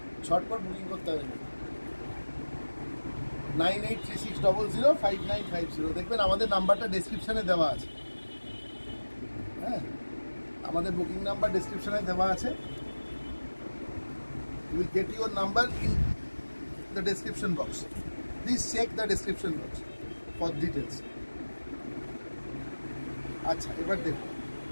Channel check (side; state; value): both; inverted; correlation -1.00